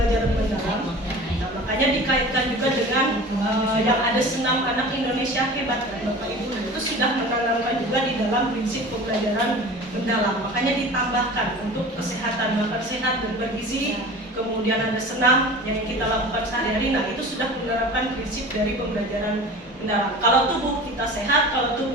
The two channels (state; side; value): normal; both; correlation 0.38